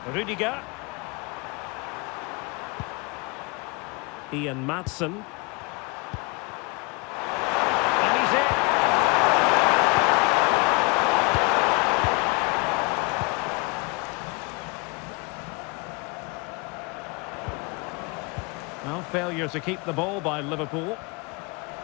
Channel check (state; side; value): quieter; right; 28.7 dB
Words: Rudiger. Ian Maatsen. Well, failure to keep the ball by Liverpool.